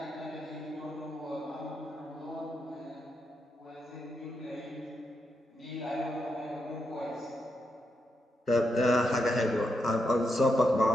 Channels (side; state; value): both; normal; correlation 0.83